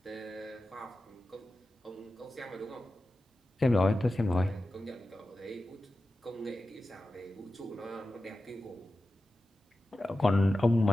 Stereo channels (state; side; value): normal; both; correlation 0.93